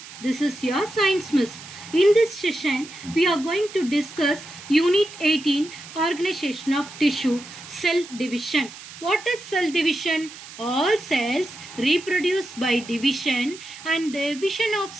this is your science miss. In this session, we are going to discuss Unit 18, Organization of Tissue, Cell Division. What is cell division? All cells reproduce by division, and the division of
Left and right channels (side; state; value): right; noise; hiss, 16 dB below the sound